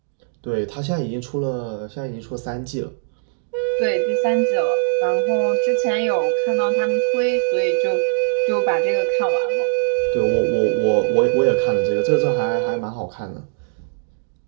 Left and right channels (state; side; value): silent; left; digital silence